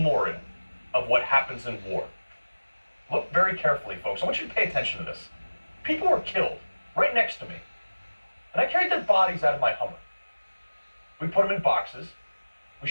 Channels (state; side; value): inverted; both; correlation -1.00